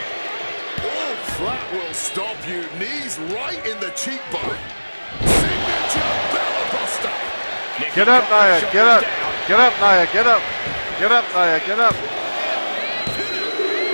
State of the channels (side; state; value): both; inverted; correlation -1.00